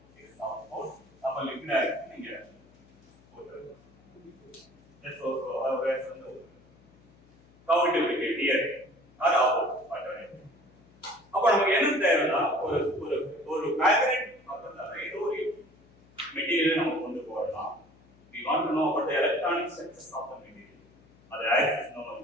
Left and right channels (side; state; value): left; noise; hum, 28 dB below the sound